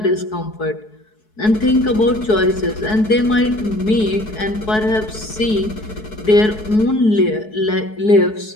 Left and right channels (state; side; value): late; right; 4.7 ms